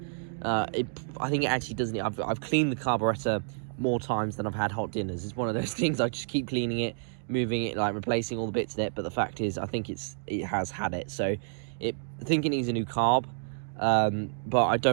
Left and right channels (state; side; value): silent; left; digital silence